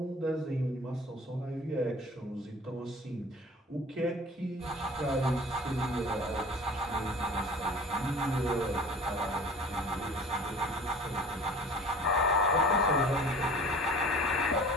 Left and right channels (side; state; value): both; normal; correlation 0.44